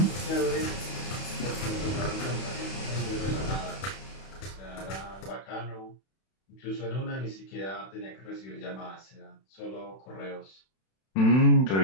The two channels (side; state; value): right; late; 31 ms